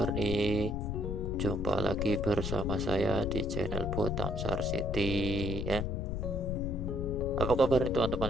nih? Jumpa lagi bersama saya di channel Botam Sar City ya. Apa kabar nih teman-teman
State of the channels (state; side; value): noise; left; rumble, 2 dB below the sound